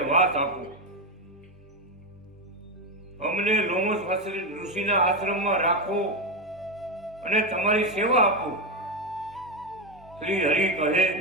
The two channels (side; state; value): both; normal; correlation 0.10